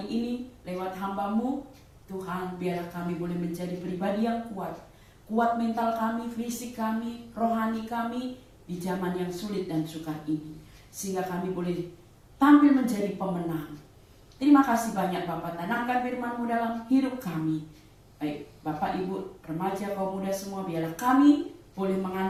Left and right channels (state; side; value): identical; both; correlation 1.00